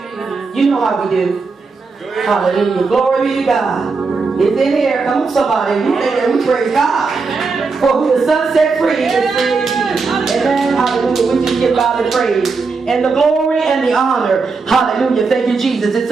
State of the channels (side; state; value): left; quieter; 4.5 dB